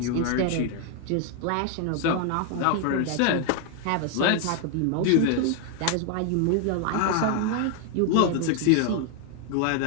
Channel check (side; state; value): both; different; correlation 0.00